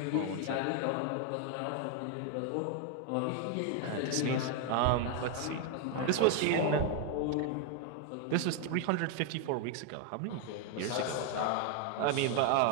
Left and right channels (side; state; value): both; different; correlation 0.00